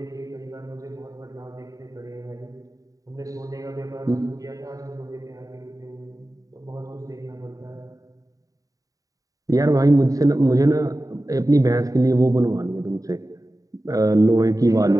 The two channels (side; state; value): left; late; 0.17 ms